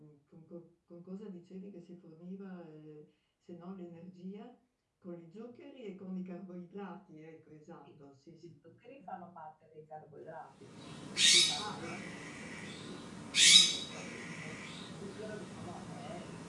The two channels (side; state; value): both; identical; correlation 1.00